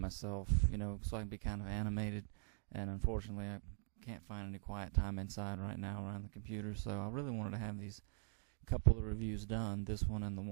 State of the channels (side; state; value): left; silent; digital silence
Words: so I can be kind of animated, and unfortunately I can't find any quiet time inside right now around the computer, so I really wanted to have these couple of reviews done, this one and the